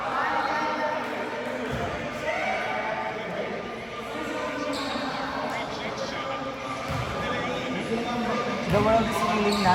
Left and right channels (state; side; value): identical; both; correlation 1.00